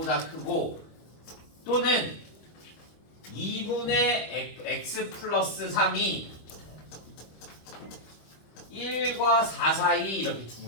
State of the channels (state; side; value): late; right; 25 ms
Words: 크고, 또는 2분의 x 플러스 3이 1과 4 사이 이렇게 두